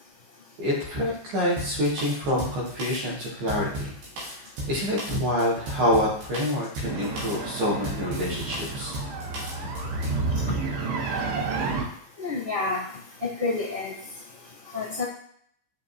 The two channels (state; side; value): late; left; 15 ms